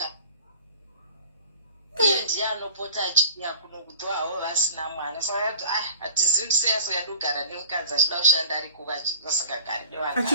Iye ndiye anopota achiuya kuno kudzoawo vasina mwana. Saka hatizivi kuti sei asingandogara nemukadzi achida kushanda ari kuva vasingagari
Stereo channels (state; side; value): inverted; both; correlation -0.43